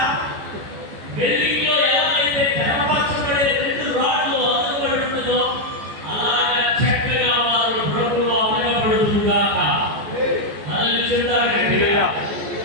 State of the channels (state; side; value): late; left; 14 ms